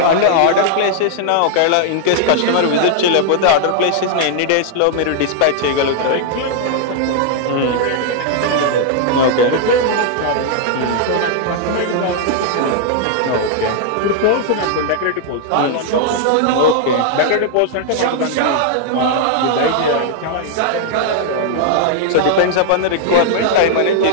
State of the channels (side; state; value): both; different; correlation -0.01